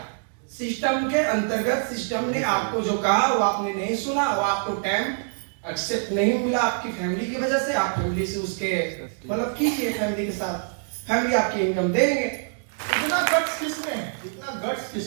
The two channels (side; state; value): left; silent; digital silence